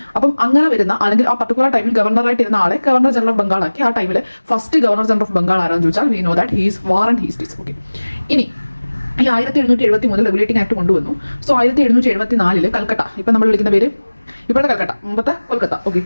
അപ്പം അങ്ങനെ വരുന്ന അല്ലെങ്കിൽ ആ പർട്ടിക്കുലർ ടൈമിൽ ഗവർണറായിട്ട് ഇരുന്ന ആളെ ഗവർണർ ജനറൽ ഓഫ് ബംഗാൾ ആക്കി. ആ ടൈമിൽ first governor general of Bengal ആരാന്ന് ചോദിച്ചാൽ we know that he's Warren Hastings. Okay, ഇനി ഈ 1773 റെഗുലേറ്റിംഗ് ആക്ട് കൊണ്ടുവന്നു. സോ 1774 കൽക്കട്ട, ഇപ്പം നമ്മൾ വിളിക്കുന്ന പേര് ഇപ്പോഴത്തെ കൽക്കട്ട, മുമ്പത്തെ കൊൽക്കത്ത, ഓക്കെ,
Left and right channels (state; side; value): inverted; both; correlation -1.00